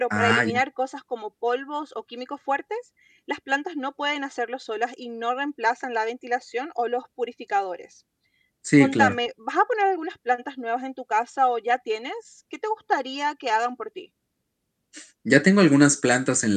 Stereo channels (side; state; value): both; identical; correlation 1.00